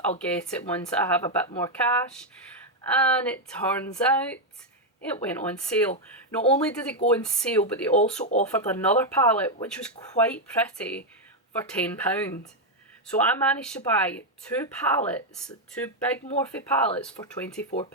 I'll get it once I have a bit more cash. And it turns out it went on sale. Not only did it go on sale, but they also offered another palette which was quite pretty for £10. So I managed to buy two palettes, two big Morphe palettes for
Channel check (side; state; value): both; normal; correlation 0.02